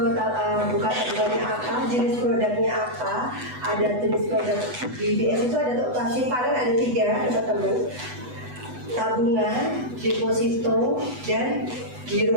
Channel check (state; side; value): late; left; 8.1 ms